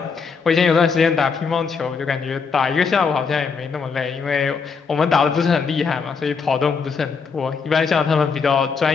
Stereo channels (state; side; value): quieter; right; 5.4 dB